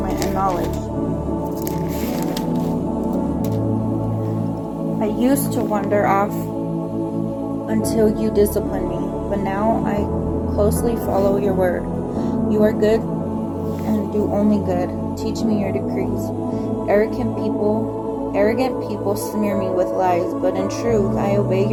and knowledge. I used to wander off until you disciplined me, but now I closely follow your word. You are good and do only good. Teach me your decrees. Arrogant people smear me with lies, but in truth I obey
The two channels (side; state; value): both; identical; correlation 1.00